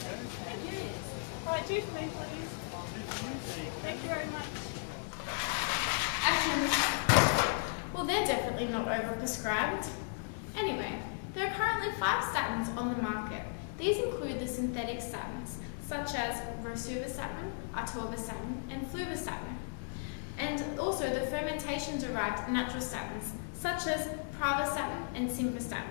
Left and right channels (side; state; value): right; silent; 54 dB below the other